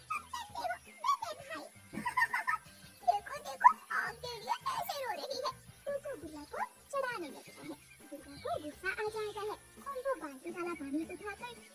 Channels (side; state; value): both; identical; correlation 1.00